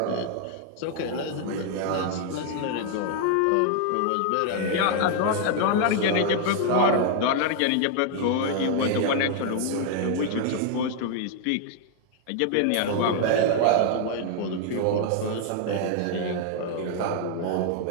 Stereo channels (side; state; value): both; different; correlation 0.00